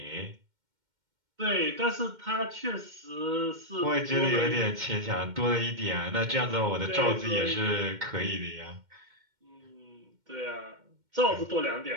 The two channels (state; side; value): late; left; 2.1 ms